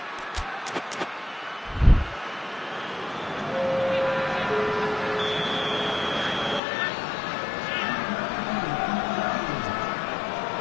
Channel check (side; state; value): right; drops out; at 6.6 s